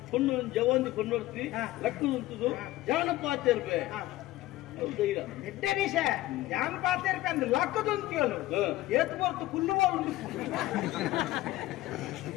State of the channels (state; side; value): quieter; right; 16.7 dB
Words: ಪೊಣ್ಣು ಜವಂದಿ ಪೊನ್ನೊಡ್ತಿ ಲಕ್ಕು ಉಂಟುದು ಜಾನಪಾತ ಇರ್ಬೇ ಎಡ್ಡನಿಷ ಜಾನಪಾತ ಇರ್ಬೇ ಅಂದ್ರೆ ಲಕ್ಕದು ಅಂತೀವಲ್ಲ ಏತ್ ಬರ್ತು ಕುಲ್ಲುವಳು